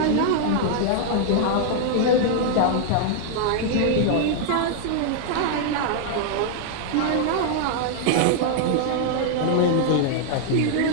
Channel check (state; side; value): different; both; correlation -0.01